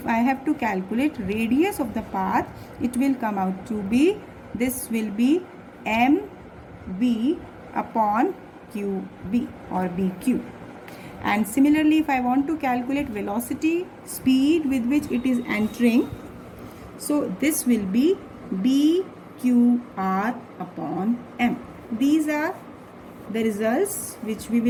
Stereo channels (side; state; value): both; identical; correlation 1.00